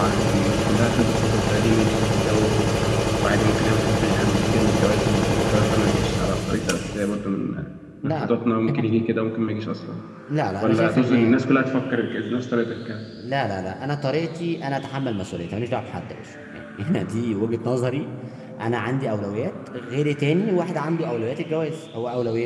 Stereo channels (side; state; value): both; identical; correlation 1.00